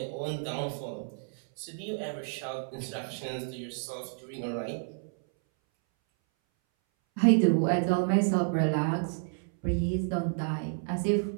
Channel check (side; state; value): left; silent; 58 dB below the other